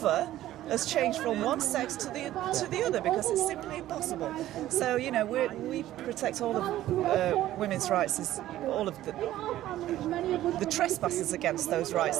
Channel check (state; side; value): quieter; left; 14.0 dB